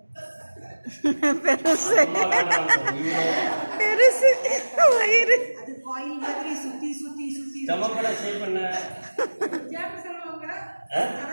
பெருசு பெருசு வயிறு. அது காயில் மாதிரி சுத்தி சுத்தி சுத்தி. ஸ்டமக்கோட ஷேப் என்ன?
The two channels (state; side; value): inverted; both; correlation -1.00